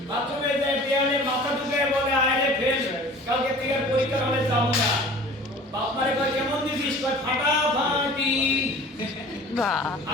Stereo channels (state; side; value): normal; both; correlation 0.44